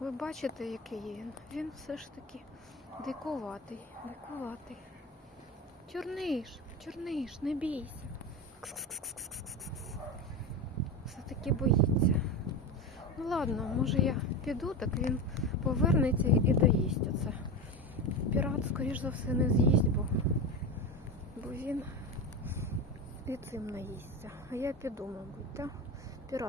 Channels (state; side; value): normal; both; correlation 0.22